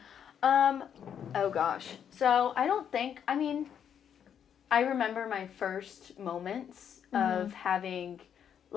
Oh gosh. So I remember my first moments of having,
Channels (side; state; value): right; quieter; 8.5 dB